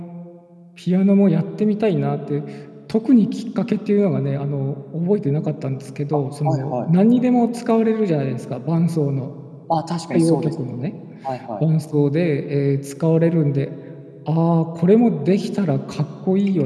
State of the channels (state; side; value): identical; both; correlation 1.00